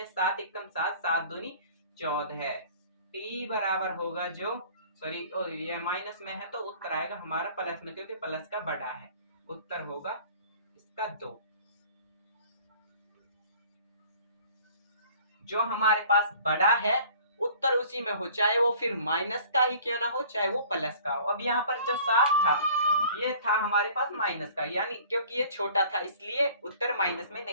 7 एकम 7, 7 दूनी 14, टी बराबर होगा जो सॉरी ये माइनस में है तो उत्तर आएगा हमारा प्लस में, क्योंकि प्लस का बड़ा है, उत्तर होगा इसका 2। जो हमारे पास बड़ा है उत्तर उसी में हो, चाहे वो फिर माइनस का ही क्यों ना हो, चाहे वो प्लस का हो। अब यहाँ पर जो 7 था ये था हमारे पास माइनस का, यानी क्योंकि ये छोटा था इसलिए उत्तर माइनस में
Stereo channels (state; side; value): inverted; both; correlation -0.50